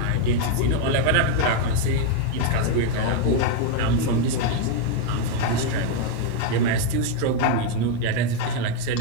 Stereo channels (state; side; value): different; both; correlation 0.01